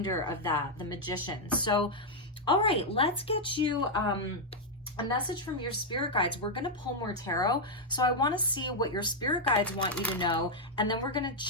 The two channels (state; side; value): normal; both; correlation -0.02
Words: of that, the Magician. So, all right, let's get you a message from your spirit guides. We're going to pull more tarot. So I want to see what your spirit guides want you to know. And then we're going to